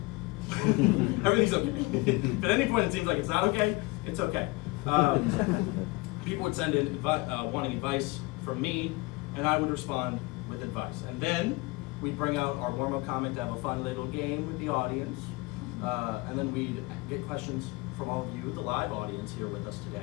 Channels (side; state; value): right; quieter; 23.7 dB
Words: Everything's okay. If at any point it seems like it's not okay, it's okay. People would send in wanting advice from me, and I would respond with advice. And then we'd bring out our warm-up comment to have a fun little game with the audience. And then we'd get questions from all of you, the live audience here with us